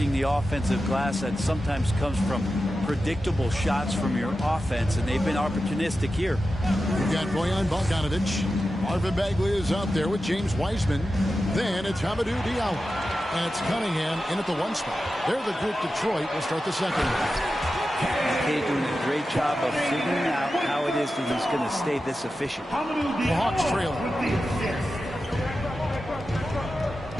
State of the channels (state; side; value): normal; both; correlation 0.92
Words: the offensive glass that sometimes comes from predictable shots from your offense, and they've been opportunistic here. We've got Bojan Bogdanovic. Marvin Bagley is out there with James Wiseman. Then it's Hamidou Diallo. And it's Cunningham in at the one spot. They're the group Detroit will start the second. McKay doing a great job of figuring out how it is that he's going to stay this efficient. The Hawks trail.